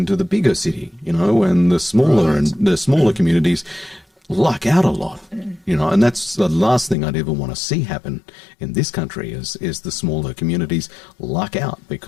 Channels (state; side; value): drops out; right; at 7.0 s